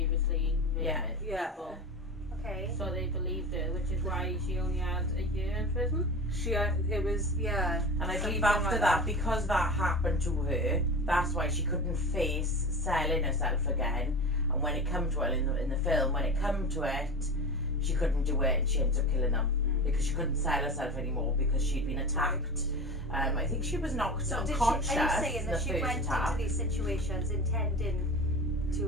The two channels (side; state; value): both; normal; correlation 0.30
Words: raped people. Okay. So they believed her, which is why she only had a year in prison. It was And I believe after that, because that happened to her, that's why she couldn't face selling herself again. And when it come to her in the film, when it come to it, she couldn't do it, and she ended up killing them because she couldn't sell herself anymore because she'd been attacked. I think she was knocked unconscious. Are you saying in that the she first went attack. into these situations intending